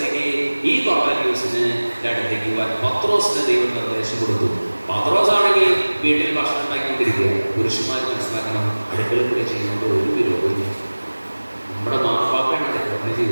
ഈ കൊർന്നേലിയോസിന് അടുത്തേക്ക് പോകാൻ പത്രോസിന് ദൈവം നിർദ്ദേശം കൊടുത്തു. പത്രോസ് ആണെങ്കിൽ വീട്ടിൽ ഭക്ഷണം ഉണ്ടാക്കിക്കൊണ്ടിരിക്കുക. പുരുഷന്മാർ മനസ്സിലാക്കണം, അടുക്കള കൂടെ ചെയ്യുന്നത് ഒരു വിരോധമില്ല. നമ്മുടെ മാപ്പാപ്പയാണ് അടുക്കള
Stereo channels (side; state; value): both; inverted; correlation -1.00